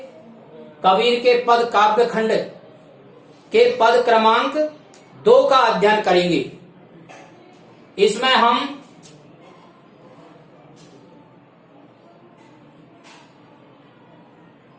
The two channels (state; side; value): identical; both; correlation 1.00